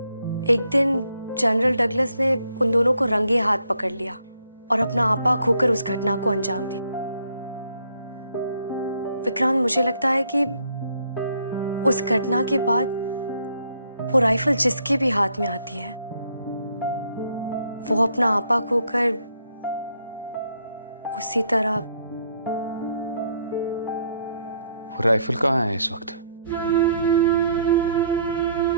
एक दिन जनरल डगलस ने उन दोनों को रंगे हाथ पकड़ लिया और अपना आपा खोकर उस घटना को अंजाम दिया। विक्रांत, मुझे लगता है कि उस घटना के बाद वो राइफल जिसके भी हाथ में आती है वो अपना आपा खोकर उसी तरह। वो राइफल कहाँ है इस वक्त?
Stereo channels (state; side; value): inverted; both; correlation -0.70